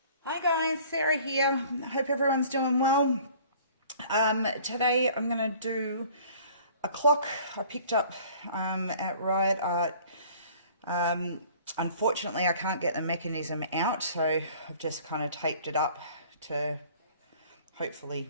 Hi guys, Sarah here. Hope everyone's doing well. Today I'm going to do a clock I picked up at Riot Art. Unfortunately, I can't get the mechanism out, so I've just kind of taped it up to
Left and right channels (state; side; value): inverted; both; correlation -0.51